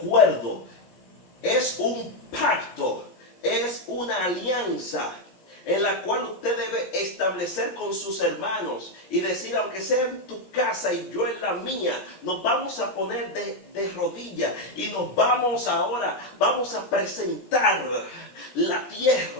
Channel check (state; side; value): late; right; 17 ms